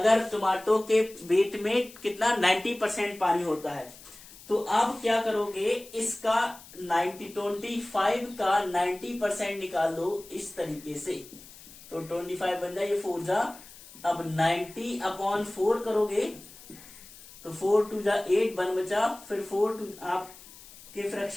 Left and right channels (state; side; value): noise; left; hiss, 19 dB below the sound